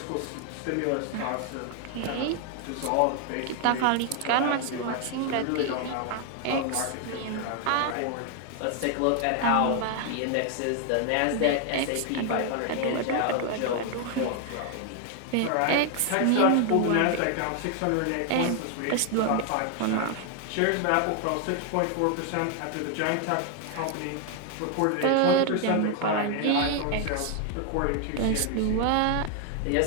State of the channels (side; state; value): both; different; correlation 0.00